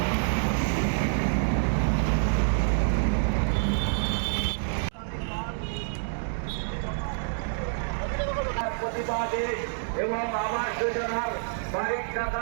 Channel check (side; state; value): left; silent; digital silence